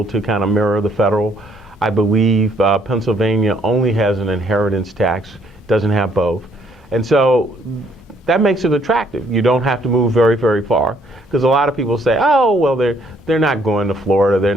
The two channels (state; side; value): normal; both; correlation 0.67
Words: to kind of mirror the federal. I believe Pennsylvania only has an inheritance tax, doesn't have both. And so that makes it attractive. You don't have to move very, very far, because a lot of people say, oh, well, they're not going to Florida, they're